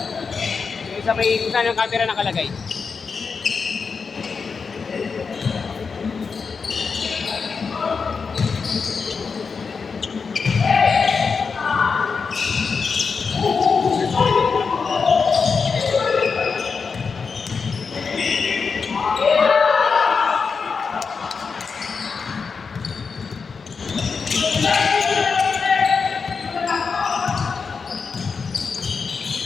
Yung sa may kung saan ang camera nakalagay.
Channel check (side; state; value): right; quieter; 5.3 dB